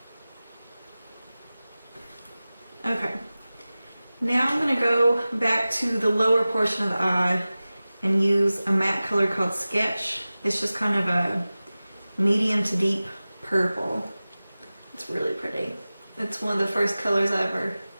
Okay. Now I'm going to go back to the lower portion of the eye and use a matte color called Sketch. It's just kind of a medium to deep purple. It's really pretty. It's one of the first colors I ever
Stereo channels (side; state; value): both; inverted; correlation -0.97